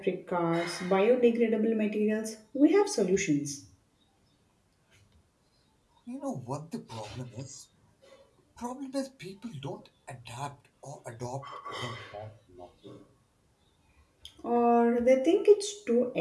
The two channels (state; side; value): identical; both; correlation 1.00